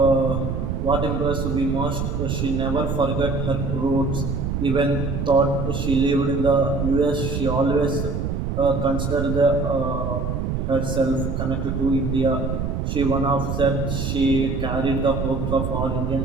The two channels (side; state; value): right; noise; rumble, 2 dB below the sound